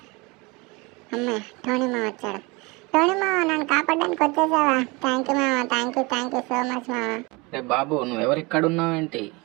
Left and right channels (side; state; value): left; quieter; 26.0 dB